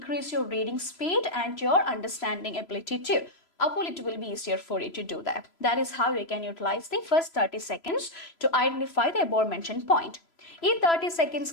your reading speed and your understanding ability too. അപ്പോൾ it will be easier for you to do that. That is how you can utilize the first 30 seconds to identify the above mentioned point. ഈ 30 seconds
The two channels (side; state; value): right; late; 3.0 ms